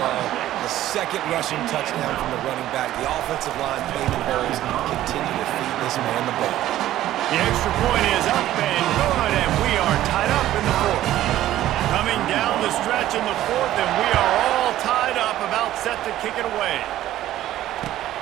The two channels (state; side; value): quieter; left; 13.7 dB